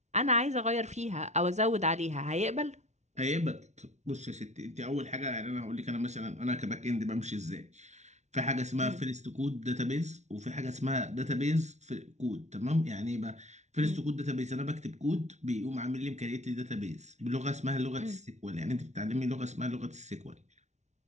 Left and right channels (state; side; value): late; left; 0.33 ms